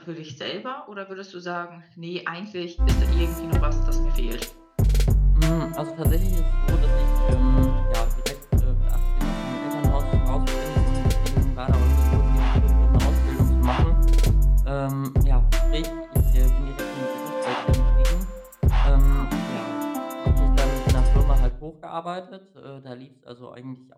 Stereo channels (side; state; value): both; identical; correlation 1.00